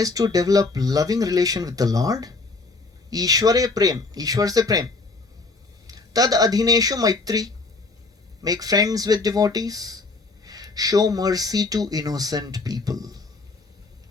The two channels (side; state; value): right; quieter; 3.7 dB